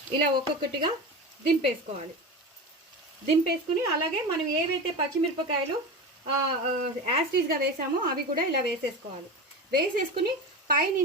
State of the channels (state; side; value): normal; both; correlation 0.26